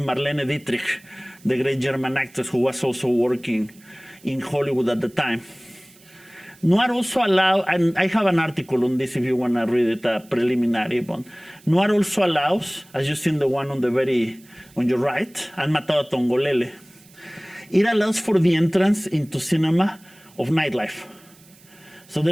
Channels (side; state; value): right; noise; hiss, 27 dB below the sound